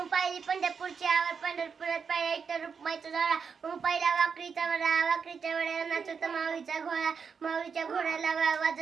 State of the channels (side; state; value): left; quieter; 6.0 dB